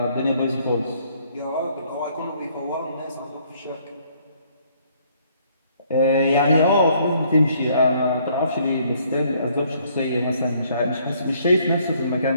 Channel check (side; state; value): both; inverted; correlation -0.65